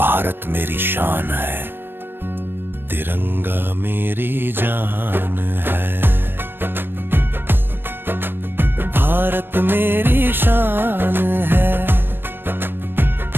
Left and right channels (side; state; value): left; late; 0.098 ms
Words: मेरी शान है, तिरंगा मेरी जान है। भारत मेरी शान है,